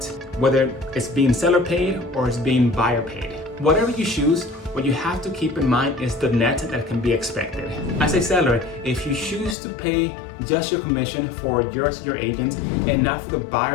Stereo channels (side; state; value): right; drops out; at 9.6 s